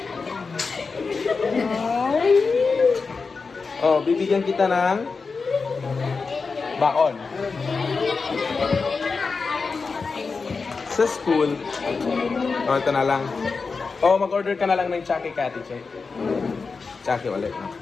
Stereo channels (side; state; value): right; quieter; 4.6 dB